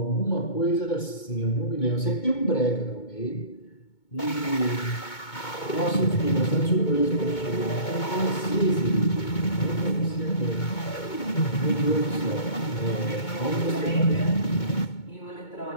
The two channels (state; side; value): late; right; 2.2 ms